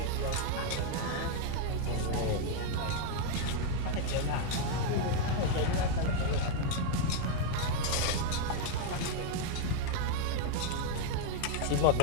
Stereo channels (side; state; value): both; different; correlation 0.01